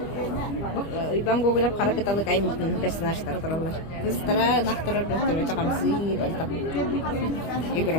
Ben Google'da karakitalık aymıştım personajlar dururlar. Kızlara naktırar gösterme çakamsı batak. Yugura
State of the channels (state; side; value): late; right; 25 ms